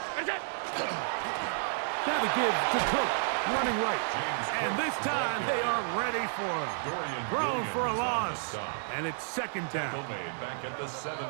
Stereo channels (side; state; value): left; silent; digital silence